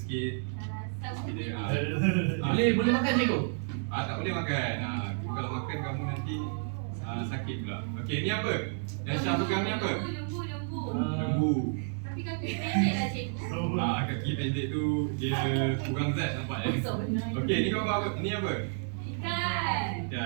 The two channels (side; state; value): left; silent; 57 dB below the other